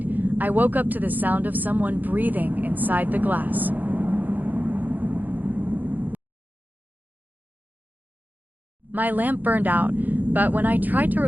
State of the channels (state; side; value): late; left; 0.084 ms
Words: I woke up to the sound of someone breathing inside the glass. My lamp burned out, but when I tried to